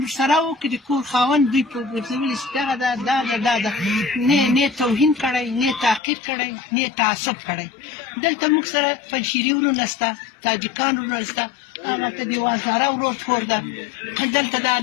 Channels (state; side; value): drops out; right; at 6.0 s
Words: ورسره و که د کور خاوند دوی په ګرځولي چې دغه دا نه توهین کړی نه تعقیب کړی نه تعصب کړی دلته موږ سره پنجشیري ورونه شته تاجکان ورونه شته هغلته د وازاره ورور کور ده دلته دا